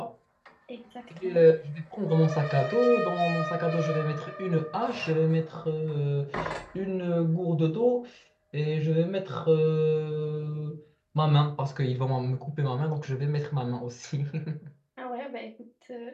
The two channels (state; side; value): identical; both; correlation 1.00